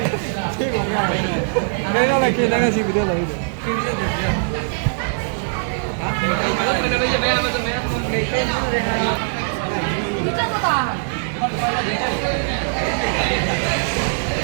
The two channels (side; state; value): left; silent; 65 dB below the other